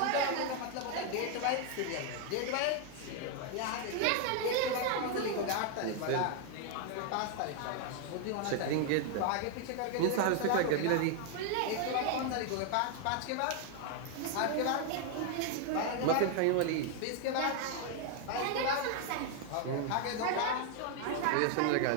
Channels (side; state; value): both; different; correlation 0.00